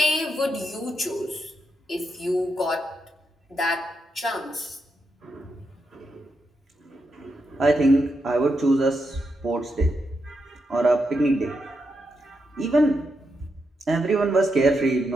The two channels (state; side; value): normal; both; correlation 0.84